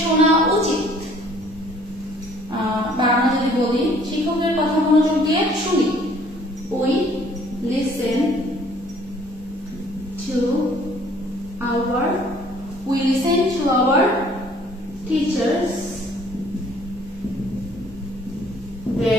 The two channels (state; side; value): normal; both; correlation 0.57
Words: শোনা উচিত, বা আমরা যদি বলি শিক্ষকের কথা মনোযোগ দিয়ে শুনি, we listen to our teachers